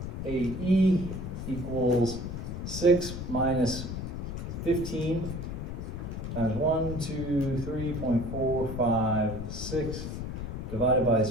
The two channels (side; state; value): left; noise; rumble, 5 dB below the sound